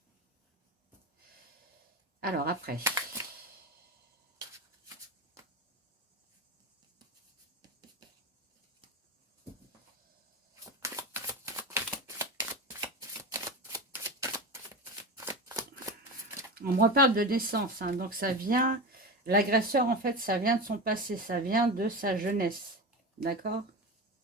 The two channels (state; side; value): normal; both; correlation 0.24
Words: Alors, après. On me reparle de naissance, hein, donc ça vient... L'agresseur, en fait, ça vient de son passé, ça vient de sa jeunesse, d'accord?